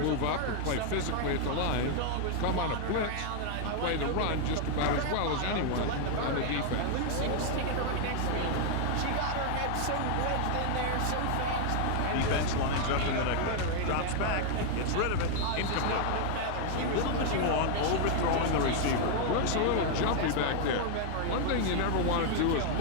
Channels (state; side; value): different; both; correlation 0.00